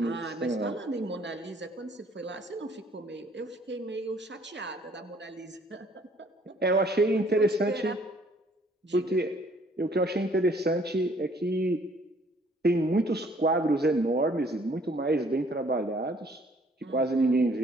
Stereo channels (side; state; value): both; normal; correlation 0.61